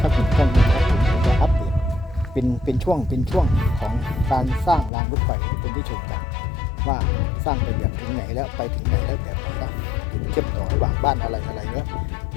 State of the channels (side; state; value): right; drops out; at 4.9 s